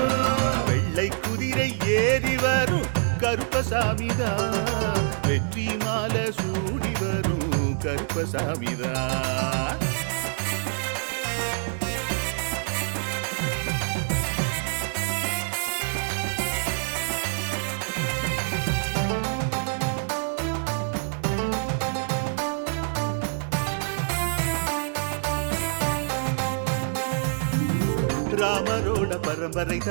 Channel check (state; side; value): silent; left; 61 dB below the other